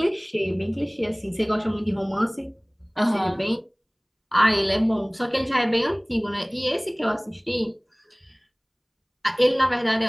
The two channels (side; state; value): both; identical; correlation 1.00